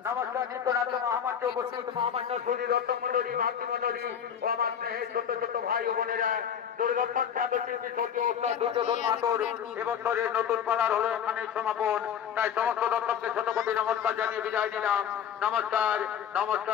নমস্কার নিত্যনাথ মহামান্য উপস্থিত মহামান্য শরীর রত্নমন্ডলী মাতৃমন্ডলী ও আমার স্নেহের ছোট ছোট ভাই ও বোনেরা দূরদর্শন খ্যাত শিল্পী স্বর্গীয় ওস্তাদ দুর্যোধন মাহাতোর এবছরের নতুন পালার হলো এখানে সমাপন। তাই সমস্ত দর্শককে ছোট কোটি নমস্কার জানিয়ে বিদায় নিলাম। নমস্কার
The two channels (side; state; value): right; quieter; 8.4 dB